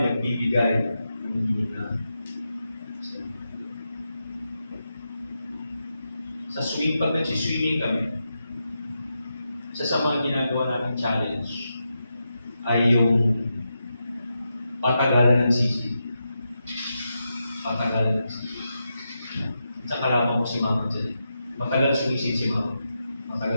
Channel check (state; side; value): inverted; both; correlation -0.87